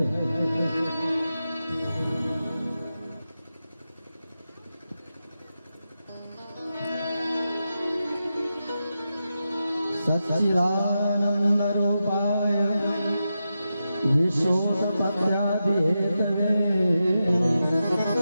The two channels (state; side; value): inverted; both; correlation -0.90